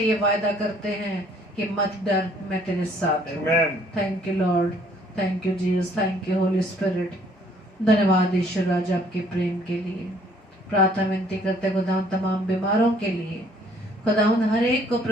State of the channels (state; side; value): normal; both; correlation 0.61